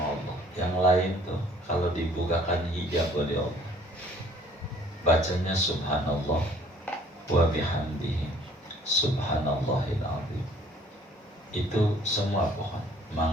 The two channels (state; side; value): normal; both; correlation 0.56